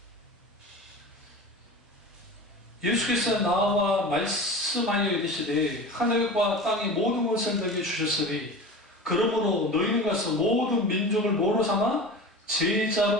예수께서 나와 말씀하여 이르시되 하늘과 땅의 모든 것을 너희에게 주셨으니 그러므로 너희는 가서 모든 민족을 뭐로 삼아?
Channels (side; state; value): both; normal; correlation 0.33